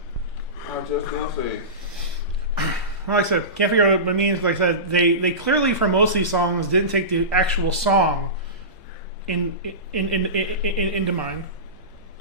I was just gonna say. Well, like I said, can't figure out what it means. Like I said, they clearly, for most of these songs, didn't take the actual song into mind.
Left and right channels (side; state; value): right; late; 2.4 ms